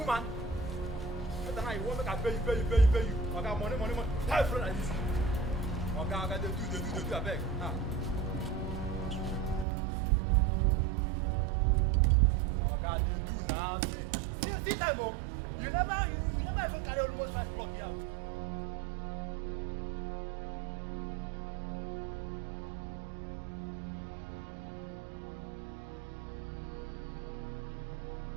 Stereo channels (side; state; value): left; drops out; at 9.7 s